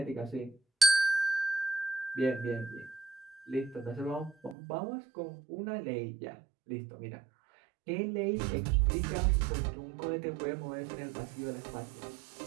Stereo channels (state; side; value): drops out; left; at 4.5 s